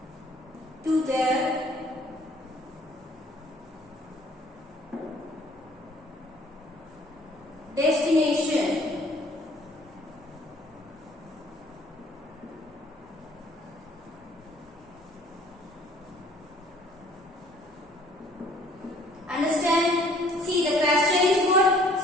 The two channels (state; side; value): normal; both; correlation 0.57